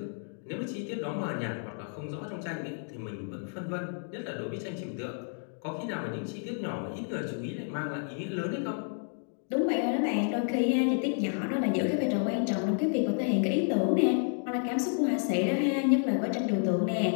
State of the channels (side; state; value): right; silent; 57 dB below the other